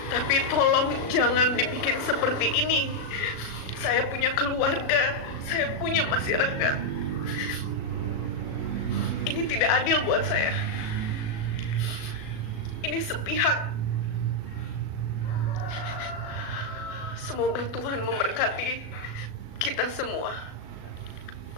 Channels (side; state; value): right; late; 36 ms